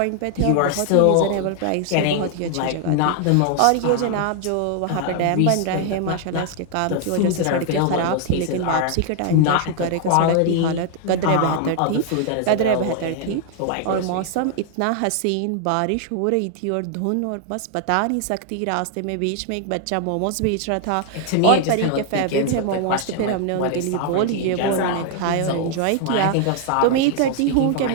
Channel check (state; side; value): different; both; correlation 0.00